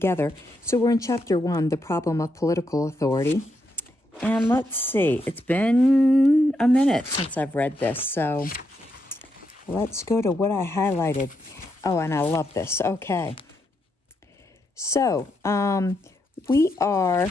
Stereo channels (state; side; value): normal; both; correlation 0.80